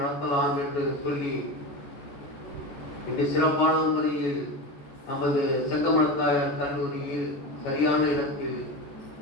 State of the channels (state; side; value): late; right; 14 ms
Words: நடத்தலாம் என்று சொல்லி இன்று சிறப்பான முறையில் நமது செங்கமலத்தாயார் கல்லூரியில் சரியான இடத்தில்